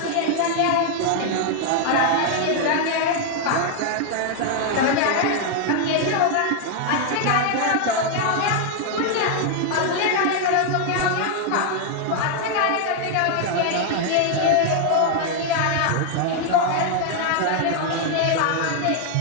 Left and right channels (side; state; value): both; different; correlation 0.00